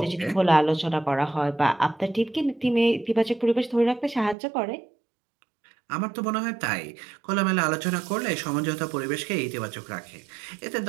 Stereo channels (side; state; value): left; drops out; at 4.4 s